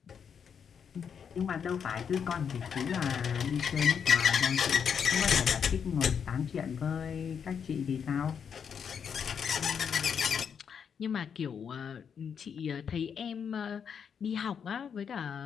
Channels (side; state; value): right; quieter; 7.2 dB